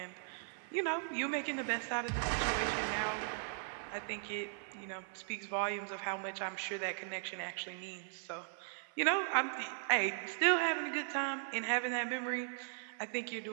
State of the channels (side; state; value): left; silent; 52 dB below the other